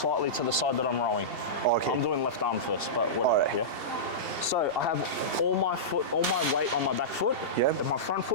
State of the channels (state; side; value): late; left; 2.7 ms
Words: to the side that I'm rowing. Okay. I'm doing left arm first, but whatever, Alright. yeah? So I have all my weight on my back foot, Yeah. and my front